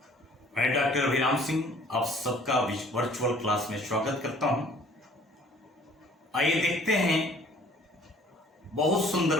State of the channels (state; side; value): normal; both; correlation 0.55